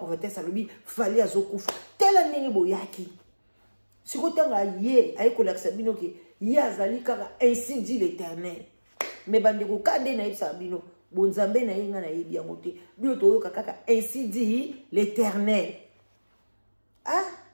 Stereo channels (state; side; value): inverted; both; correlation -1.00